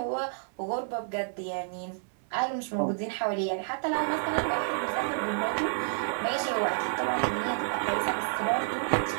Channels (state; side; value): silent; left; 58 dB below the other